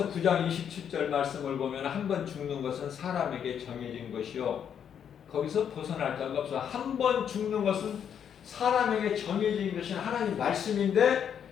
9장 27절 말씀을 보면 한 번 죽는 것은 사람에게 정해진 것이요. 거기서 벗어날 자가 없어. 한 번 죽는 것은 사람에게 정해진 것이 하나님 말씀인데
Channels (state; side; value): quieter; right; 8.4 dB